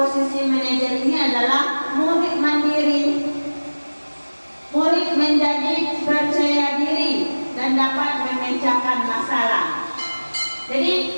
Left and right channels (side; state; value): both; inverted; correlation -1.00